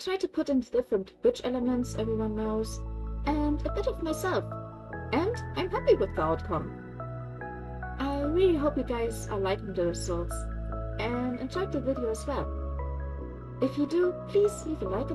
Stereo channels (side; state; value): both; identical; correlation 1.00